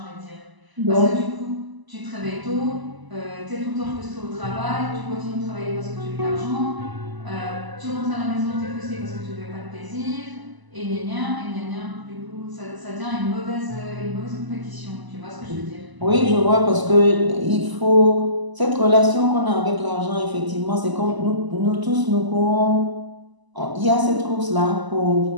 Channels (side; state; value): left; late; 1.0 ms